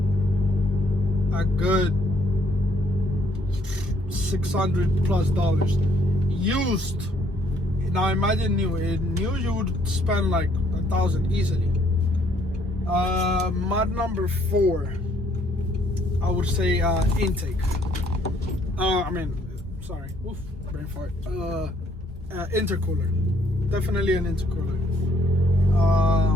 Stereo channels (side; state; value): both; normal; correlation 0.66